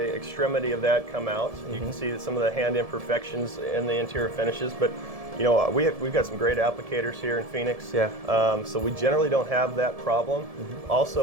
extremity of that come out. You can see some of the hand imperfections in the interior finishes, but we've got some great applicators here in Phoenix, so we generally don't have that problem.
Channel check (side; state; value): left; late; 1.7 ms